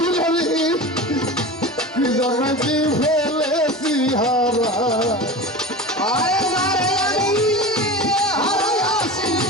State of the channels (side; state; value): both; normal; correlation 0.30